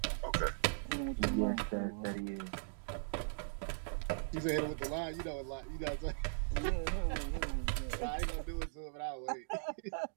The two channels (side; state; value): left; silent; digital silence